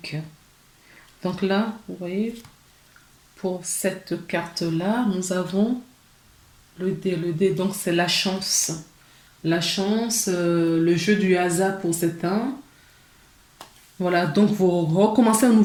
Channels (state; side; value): identical; both; correlation 1.00